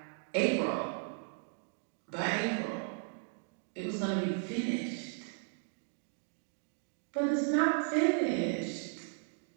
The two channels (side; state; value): left; silent; 54 dB below the other